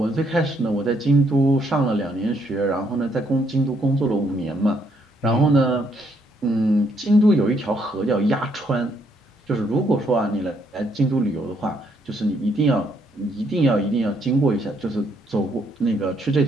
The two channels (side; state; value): both; normal; correlation 0.72